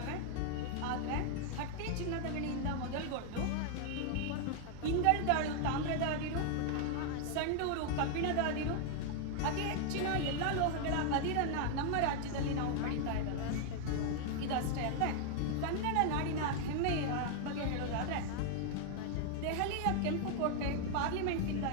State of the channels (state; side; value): different; both; correlation 0.00